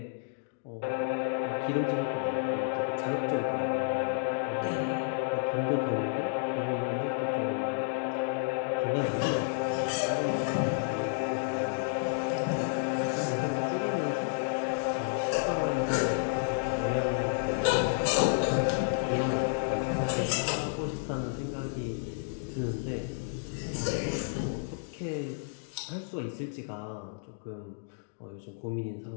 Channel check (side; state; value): right; silent; digital silence